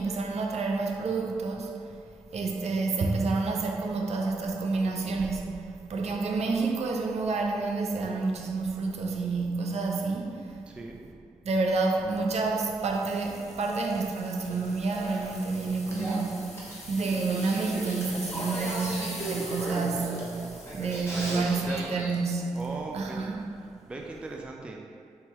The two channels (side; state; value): left; quieter; 3.2 dB